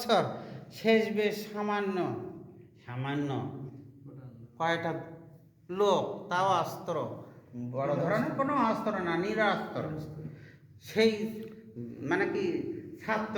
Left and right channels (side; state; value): both; identical; correlation 1.00